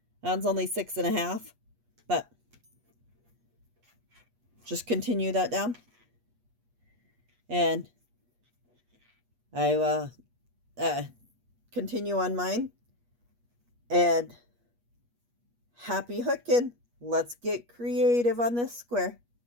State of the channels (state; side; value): late; left; 8.3 ms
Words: That's only 6.5, but just continue that down, and I will continue on mine. And happy hooking. Let's get creative on this square.